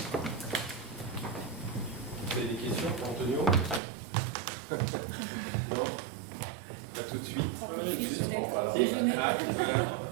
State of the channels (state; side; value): drops out; left; at 3.8 s